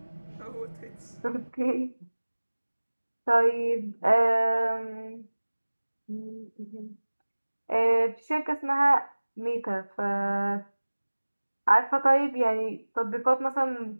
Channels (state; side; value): inverted; both; correlation -1.00